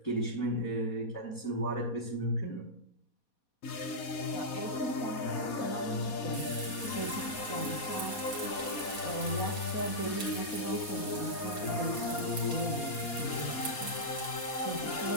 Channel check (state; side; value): late; right; 4.2 ms